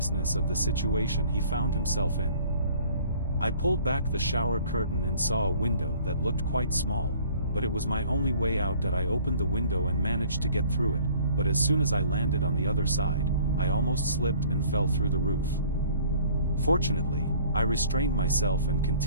of the situation he found himself in. I pulled back the shower curtain and saw a window that looked quite small, but it was my only way out. That I opened the window and managed to get through it, but as soon as I landed on the other side, I almost slipped and fell through the roof. Fortunately, I restrained myself and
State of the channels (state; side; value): inverted; both; correlation -0.53